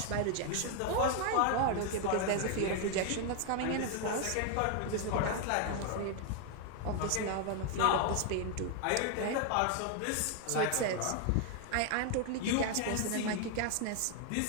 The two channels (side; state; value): both; different; correlation 0.00